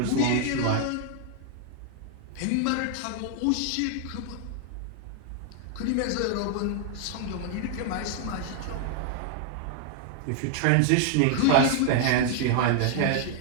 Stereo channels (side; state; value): both; different; correlation 0.00